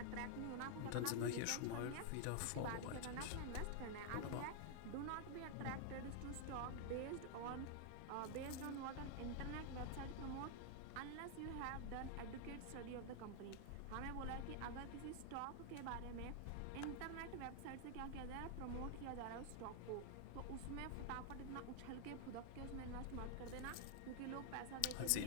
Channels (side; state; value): both; different; correlation 0.00